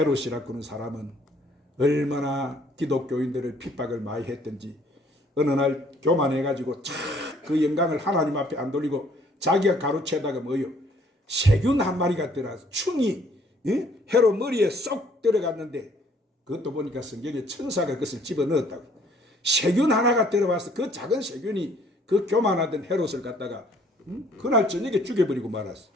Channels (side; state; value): both; normal; correlation 0.61